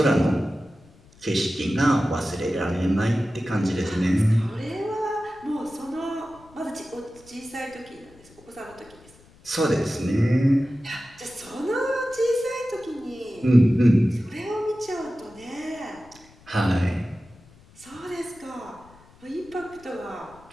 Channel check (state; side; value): noise; left; rumble, 26 dB below the sound